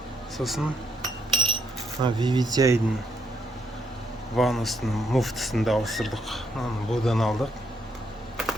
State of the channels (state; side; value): normal; both; correlation 0.74